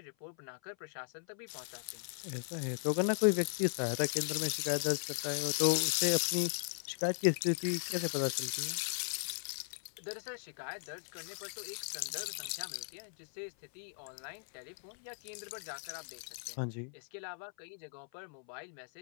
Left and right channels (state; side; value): silent; right; 53 dB below the other